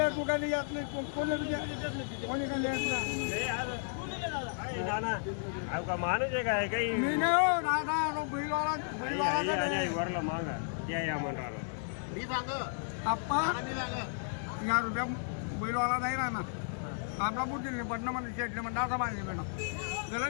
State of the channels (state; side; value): silent; right; digital silence